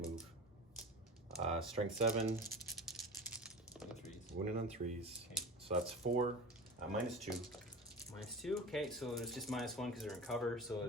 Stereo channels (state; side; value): normal; both; correlation 0.32